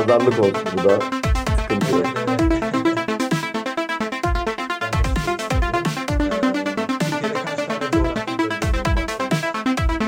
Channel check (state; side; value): identical; both; correlation 1.00